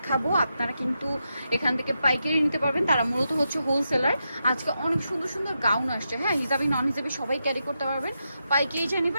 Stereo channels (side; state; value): both; inverted; correlation -0.86